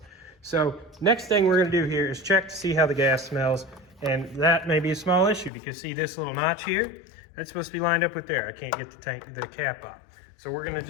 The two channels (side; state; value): right; drops out; at 5.5 s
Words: So next thing we're going to do here is check to see how the gas smells. And that may be a small issue because see this little notch here? That's supposed to be lined up with there. I can't get the cap off. So we're going to